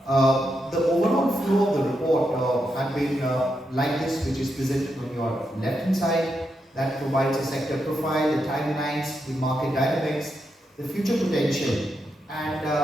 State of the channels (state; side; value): normal; both; correlation 0.84